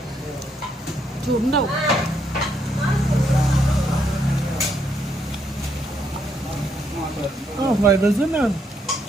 ഫ്രൈഡ് റൈസ് തന്നെ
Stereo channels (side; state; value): both; normal; correlation 0.75